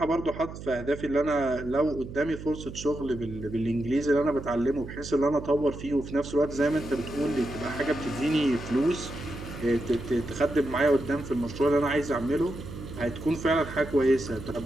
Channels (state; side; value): noise; right; hum, 11 dB below the sound